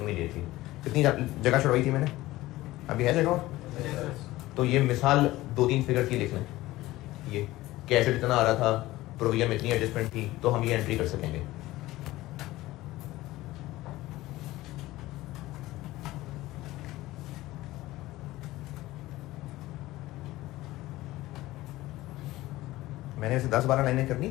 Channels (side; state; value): right; quieter; 17.5 dB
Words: immediately. कितनी जगह छुड़वाई थी मैंने? अभी है जगह? तो ये मिसाल 2-3 फिगर की लिख लें, ये कि एसेट इतना आ रहा था, प्रोविजन में इतनी एडजस्टमेंट थी, तो हम ये एंट्री कर सकेंगे। मैंने इसे 10-12 लाइनें करनी